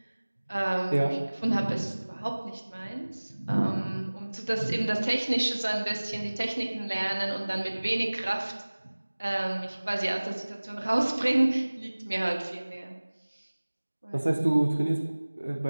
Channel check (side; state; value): both; inverted; correlation -1.00